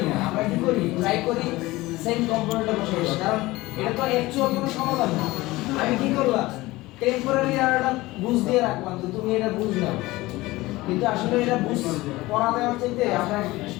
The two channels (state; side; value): quieter; right; 19.5 dB